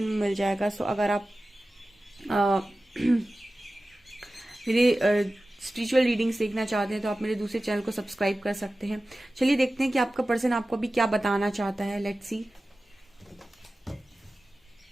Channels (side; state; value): both; normal; correlation 0.95